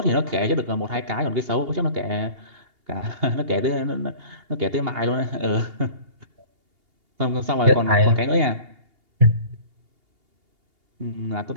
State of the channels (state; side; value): late; left; 2.8 ms